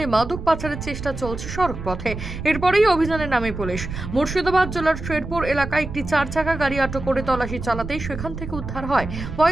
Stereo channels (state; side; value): noise; right; rumble, 8 dB below the sound